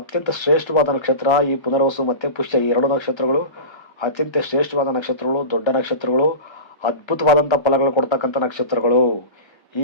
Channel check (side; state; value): right; late; 1.3 ms